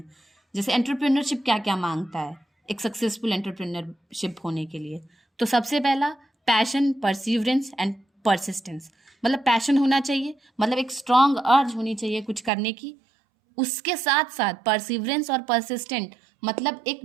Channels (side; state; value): left; drops out; at 12.5 s